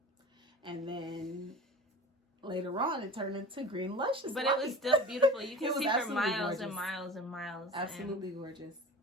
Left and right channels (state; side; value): normal; both; correlation 0.37